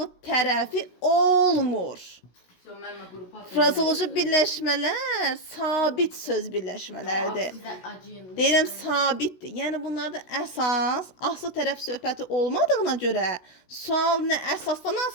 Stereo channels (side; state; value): right; late; 16 ms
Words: tərəfi olmur. Frazoloji birləşmələr sabit söz birləşmələrdir. Deyirəm sabitdir. Yəni bunlarda əsas, asıl tərəf söhbəti olmadığına görə sual nə əsasdan